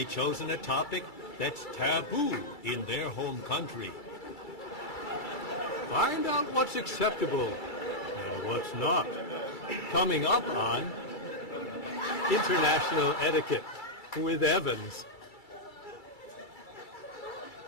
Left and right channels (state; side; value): late; right; 2.3 ms